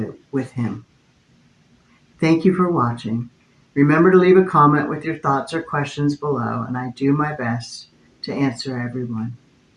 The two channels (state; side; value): identical; both; correlation 1.00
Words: with Him. Thank you for watching. Remember to leave a comment with your thoughts or questions below, and I do my best to answer everyone.